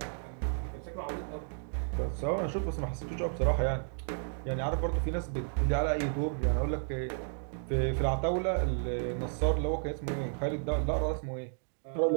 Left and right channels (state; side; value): silent; left; digital silence